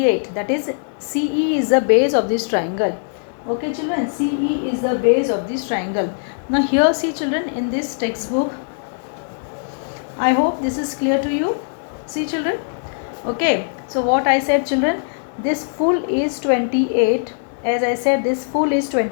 That is CE is the base of this triangle. Okay children, CE is the base of this triangle. Now here see children, in this textbook, I hope this is clear to you. See children. Okay, so what I said children, this full is 28. As I said, this full is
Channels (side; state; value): right; silent; digital silence